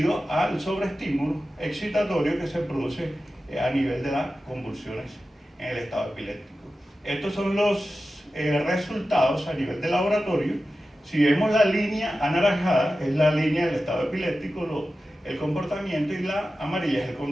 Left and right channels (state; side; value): normal; both; correlation 0.93